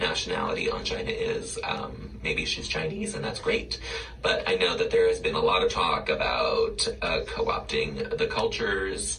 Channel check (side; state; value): both; identical; correlation 1.00